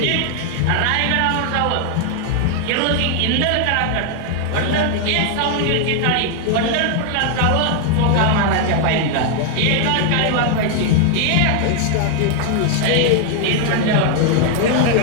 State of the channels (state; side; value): different; both; correlation 0.00